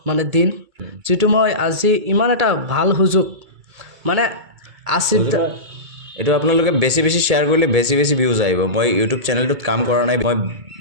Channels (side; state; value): left; late; 2.3 ms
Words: মানে দিন, যিটো মই আজি ইমান এটা ভাল সুযোগ মানে এইটো আপোনালোকে বেছি শ্বেয়াৰ কৰিলে বেছি ভিউজ আহিব মই ইউটিউব চেনেলটোত কাম কৰা নাই মই